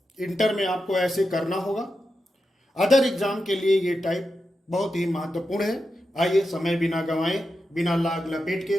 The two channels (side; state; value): both; normal; correlation 0.89